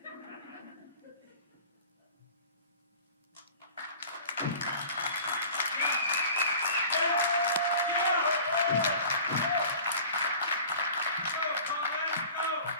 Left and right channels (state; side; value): inverted; both; correlation -0.44